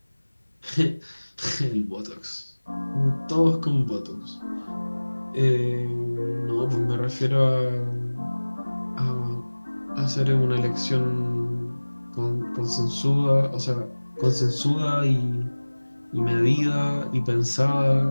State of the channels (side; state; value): both; inverted; correlation -1.00